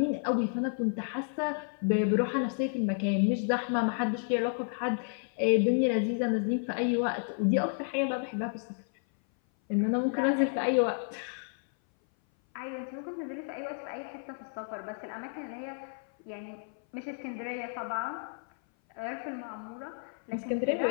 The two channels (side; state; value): right; silent; 56 dB below the other